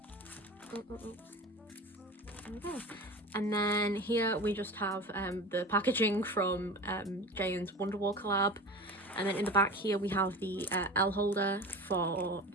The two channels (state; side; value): normal; both; correlation 0.32